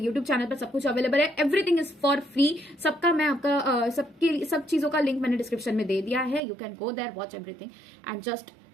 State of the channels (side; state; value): left; drops out; at 6.4 s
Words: चैनल पर सब कुछ अवेलेबल है, एवरीथिंग इज फॉर फ्री। सबका मैं आपका सब चीजों का लिंक मैंने डिस्क्रिप्शन में दे दिया है, you can go there, watch everything and just